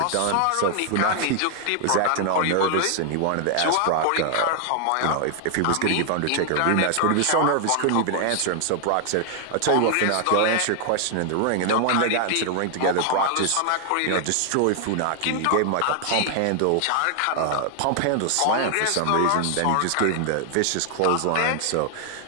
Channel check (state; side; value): different; both; correlation 0.00